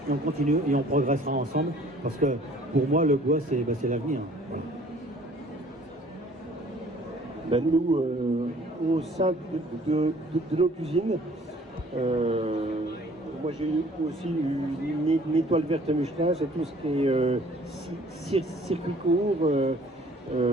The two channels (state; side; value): normal; both; correlation 0.55